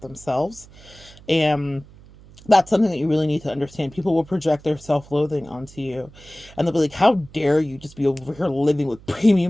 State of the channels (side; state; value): right; noise; hum, 22 dB below the sound